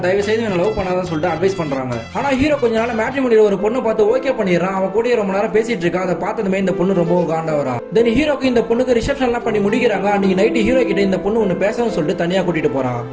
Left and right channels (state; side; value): identical; both; correlation 1.00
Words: தயவு செய்து இவனை லவ் பண்ணாதான் சொல்லிட்டு அட்வைஸ் பண்றாங்க. ஆனா ஹீரோ கொஞ்ச நாள் மேட்ரிமோனியில ஒரு பொண்ணு பார்த்து ஓகே பண்ணிடுறான். அவன் கூட ரொம்ப நேரம் பேசிட்டு இருக்கா. அதை பார்த்ததுமே இந்த பொண்ணு ரொம்ப காண்டா வரா. தென் ஹீரோக்கு இந்த பொண்ணுக்கு ரிசப்ஷன் எல்லாம் பண்ணி முடிக்கிறாங்க. அன்னைக்கு நைட் ஹீரோ கிட்ட இந்த பொண்ணு ஒன்னு பேசணும்னு சொல்லிட்டு தனியா கூட்டிட்டு போறான்.